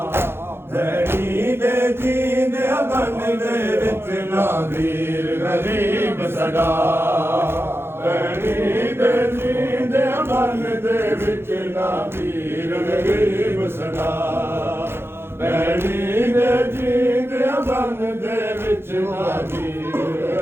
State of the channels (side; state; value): left; late; 0.11 ms